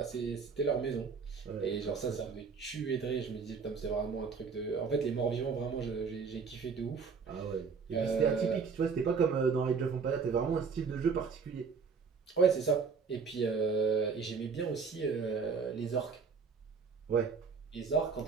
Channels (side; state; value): left; quieter; 5.4 dB